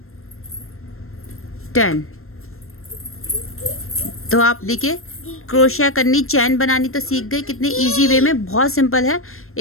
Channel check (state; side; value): late; right; 0.62 ms